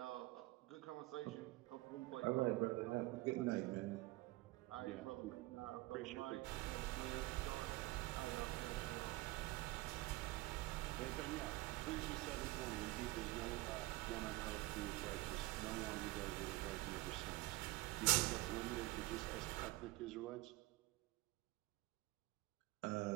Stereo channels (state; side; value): quieter; left; 20.3 dB